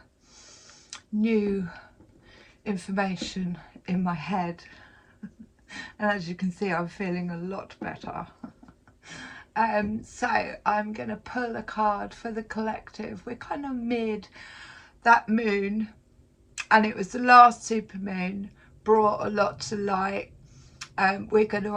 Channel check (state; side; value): identical; both; correlation 1.00